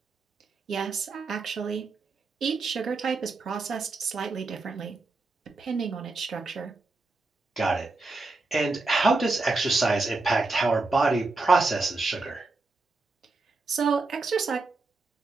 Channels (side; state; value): left; quieter; 3.6 dB